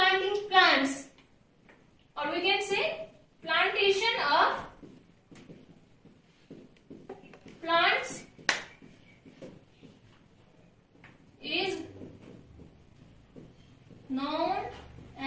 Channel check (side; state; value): both; identical; correlation 1.00